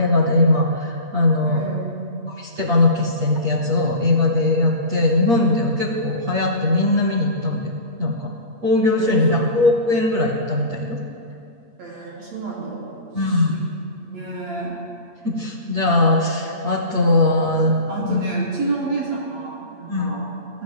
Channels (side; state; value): left; late; 8.6 ms